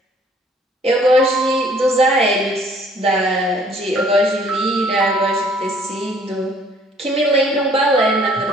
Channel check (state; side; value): normal; both; correlation 0.59